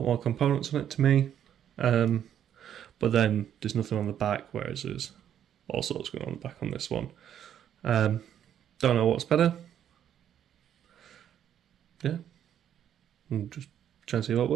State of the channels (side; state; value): left; quieter; 9.9 dB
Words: more components on it to me. But then there's nothing on the back, whereas there's all sorts going on the back on this one. Don't know what's better. Yeah. I'm just trying to see what